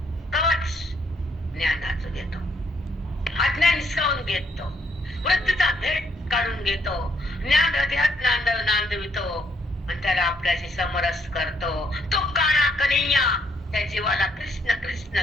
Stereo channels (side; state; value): both; normal; correlation 0.71